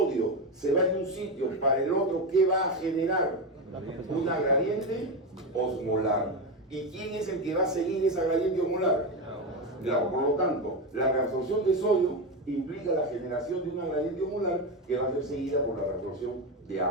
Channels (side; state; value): both; normal; correlation 0.14